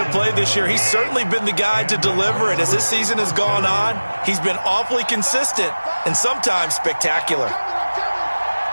a play this year, he's certainly been the guy to deliver it. As this season has gone on, he's been awfully consistent and sometimes spectacular.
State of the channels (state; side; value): inverted; both; correlation -1.00